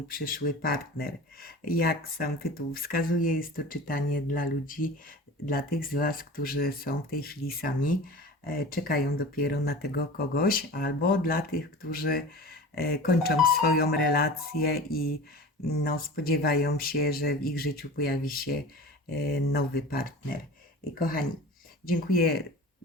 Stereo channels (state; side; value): normal; both; correlation 0.36